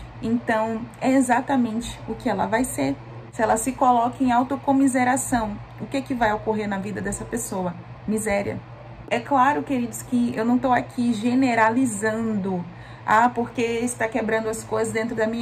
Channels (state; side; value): identical; both; correlation 1.00